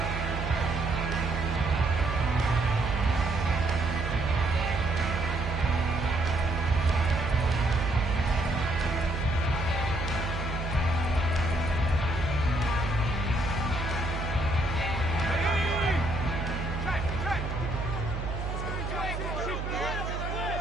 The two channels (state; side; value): noise; right; hum, 4 dB below the sound